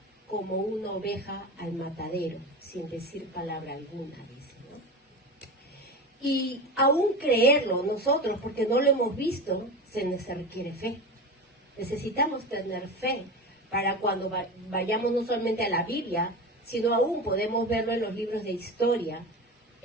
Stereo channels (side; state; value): both; normal; correlation 0.27